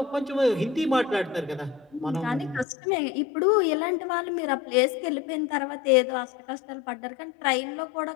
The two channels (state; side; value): drops out; right; at 2.7 s